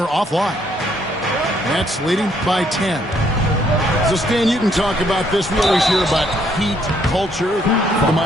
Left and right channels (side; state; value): both; normal; correlation 0.69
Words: offline. Nets leading by 10. So, Stan, you can talk about this. We always hear about Heat culture, the